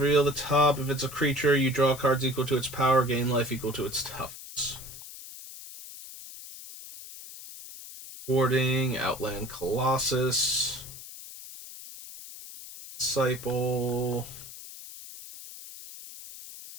reveal the top. If it's a creature, you draw cards equal to its power, gain life equal to its toughness. Warding, Outland Colossus, Disciple.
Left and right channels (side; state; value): left; noise; hiss, 14 dB below the sound